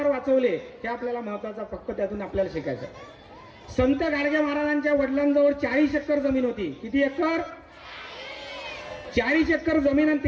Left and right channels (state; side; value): identical; both; correlation 1.00